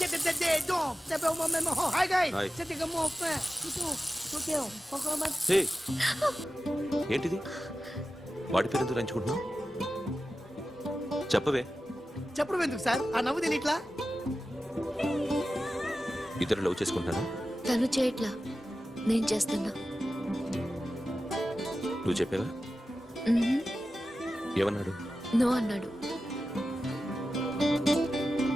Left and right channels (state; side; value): normal; both; correlation 0.93